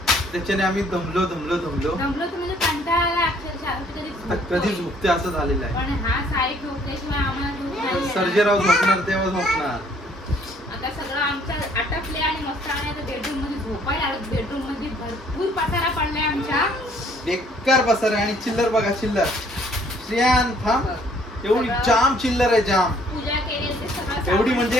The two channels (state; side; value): normal; both; correlation 0.61